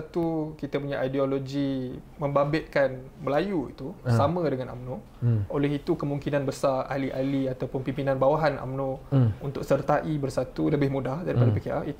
kita punya ideologi membabitkan Melayu itu sama dengan UMNO. Oleh itu kemungkinan besar ahli-ahli ataupun pimpinan bawahan UMNO untuk sertai bersatu lebih mudah daripada PKR,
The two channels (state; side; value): identical; both; correlation 1.00